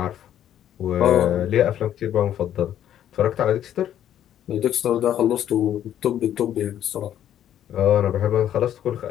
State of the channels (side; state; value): right; quieter; 10.8 dB